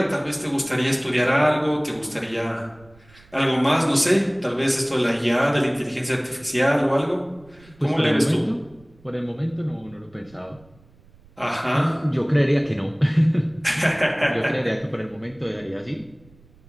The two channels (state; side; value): noise; right; rumble, 27 dB below the sound